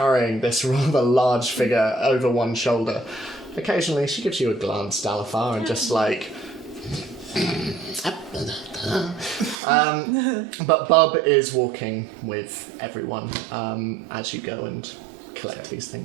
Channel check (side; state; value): left; drops out; at 9.6 s